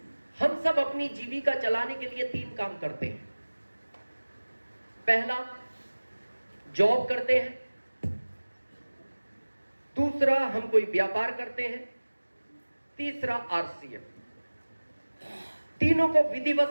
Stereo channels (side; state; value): both; inverted; correlation -1.00